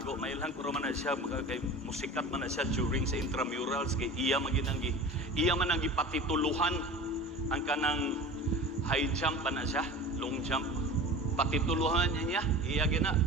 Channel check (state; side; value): normal; both; correlation 0.36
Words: may lang kuro man na siya, kay musikat man na siya during sa intramurals, kay iya man ang patituluhan ang kanang high jump pa na siya, long jump. Patituluhan niya, iya gina,